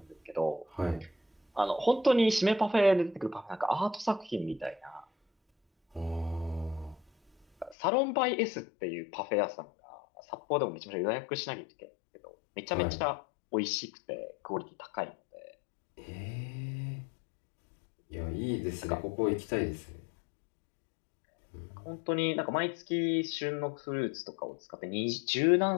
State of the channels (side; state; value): right; drops out; at 7.8 s